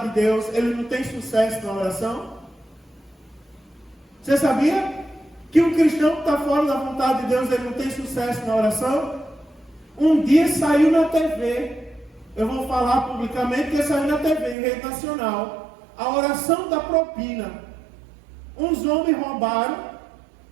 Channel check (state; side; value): drops out; left; at 14.6 s